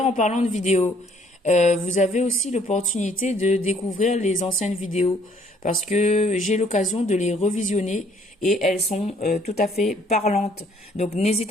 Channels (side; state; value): both; normal; correlation 0.62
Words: en parlant de vidéos, vous avez aussi l'opportunité de découvrir les anciennes vidéos parce que j'ai l'occasion de les revisionner et elles sont tout à fait parlantes. Donc